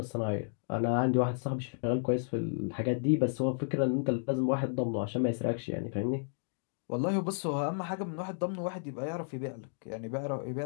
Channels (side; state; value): right; silent; digital silence